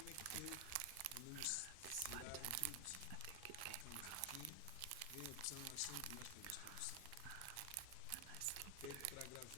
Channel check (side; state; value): both; different; correlation 0.00